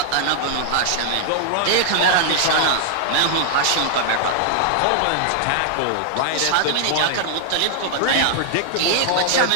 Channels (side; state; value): both; different; correlation -0.01